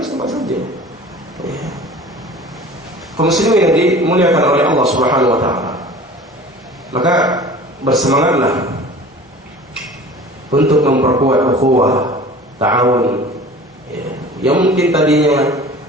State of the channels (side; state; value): both; normal; correlation 0.42